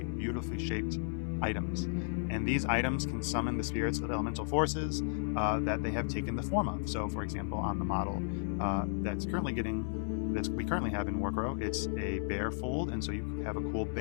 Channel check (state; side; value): silent; right; digital silence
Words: beautifully shaped items. And these items can summon the spirits of elemental forces that they have taken the form of. So for example, on the model that we currently have in Warcrow, it's a bear fold, and so you have a cool